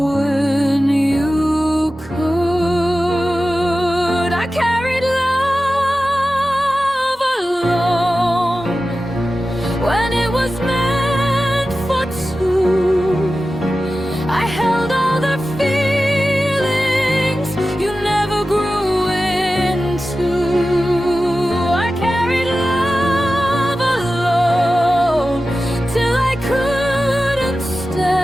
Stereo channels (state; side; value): normal; both; correlation 0.94